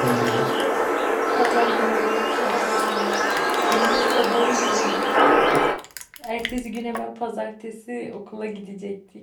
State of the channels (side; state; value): both; identical; correlation 1.00